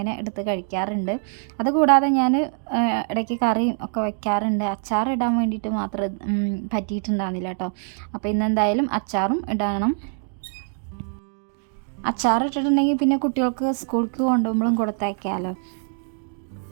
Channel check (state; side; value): silent; left; 55 dB below the other